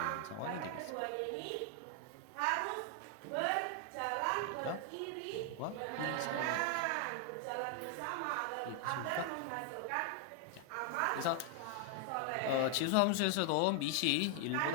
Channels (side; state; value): both; different; correlation 0.00